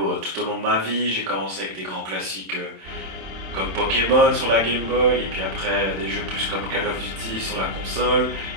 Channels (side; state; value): left; late; 27 ms